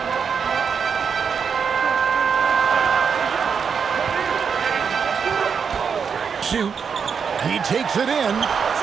Shoot. He takes it in.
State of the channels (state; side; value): quieter; left; 6.4 dB